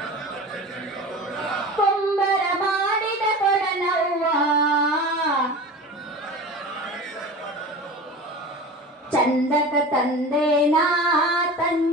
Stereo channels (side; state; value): both; normal; correlation 0.33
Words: ಕುಂಬರ ಮಾಡಿದ ಕೊಡನವ್ವ ಚಂದಕ ತಂದೇನಾ